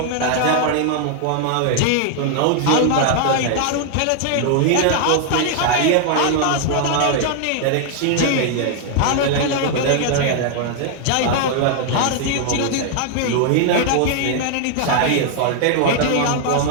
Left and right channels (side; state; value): both; different; correlation 0.00